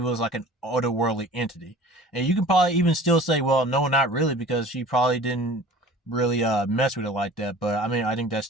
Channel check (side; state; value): both; normal; correlation 0.45